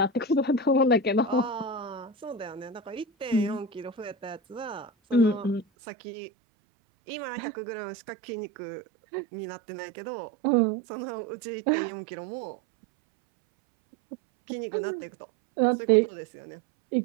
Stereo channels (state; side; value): drops out; left; at 5.7 s